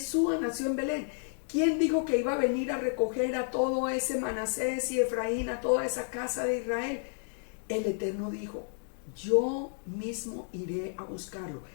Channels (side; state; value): right; silent; digital silence